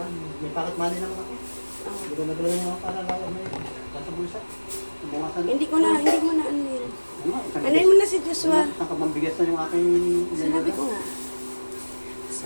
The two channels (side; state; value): both; inverted; correlation -1.00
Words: May pocket money naman ako. Oh. Hindi ko nagalaw niya para lang may sa bulsa. Bumasan. Hindi mo na ano yun. Ano mo na si Joshua? Ang kamambigas na yung aking... Sinabi ko nga.